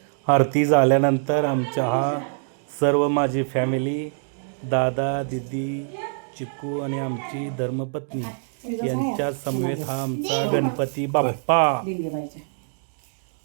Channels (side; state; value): left; silent; digital silence